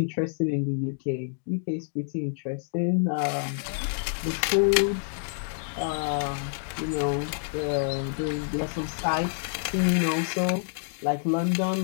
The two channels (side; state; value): right; silent; digital silence